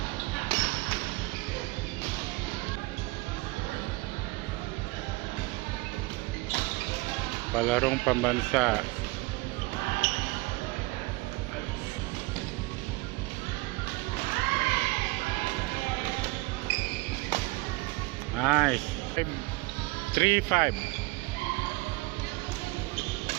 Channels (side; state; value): left; quieter; 22.8 dB